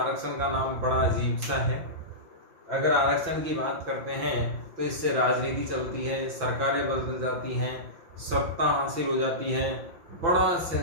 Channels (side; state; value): left; late; 5.9 ms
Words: का नाम बड़ा अजीब सा है। अगर आरक्षण की बात करते हैं तो इससे राजनीति चलती है, सरकारें बदल जाती हैं, सत्ता हासिल हो जाती है। बड़ा